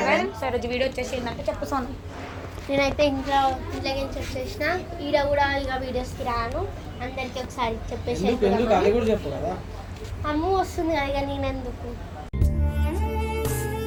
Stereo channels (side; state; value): both; identical; correlation 1.00